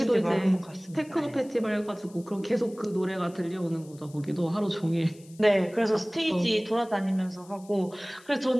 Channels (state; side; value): noise; left; hiss, 25 dB below the sound